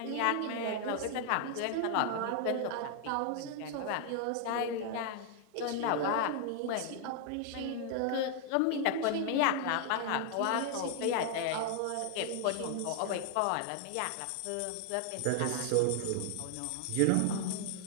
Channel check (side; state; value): both; different; correlation 0.00